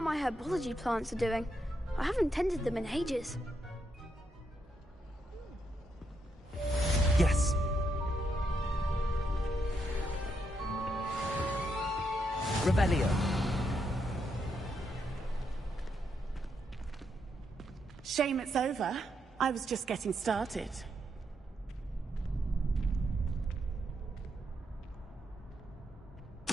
my herbology plants are doing. I haven't tended them in ages. Yes. Revelio. Shame it's over. I was just getting started.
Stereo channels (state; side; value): normal; both; correlation 0.80